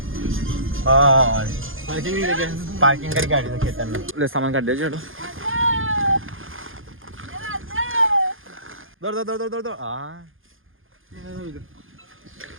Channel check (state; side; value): late; left; 0.59 ms